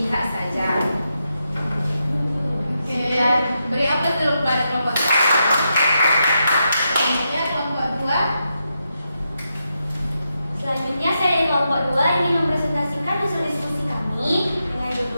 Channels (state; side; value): inverted; both; correlation -0.85